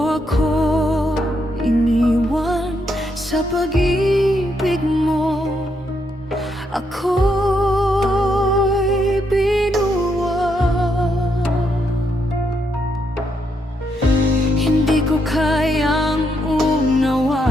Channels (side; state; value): both; normal; correlation 0.78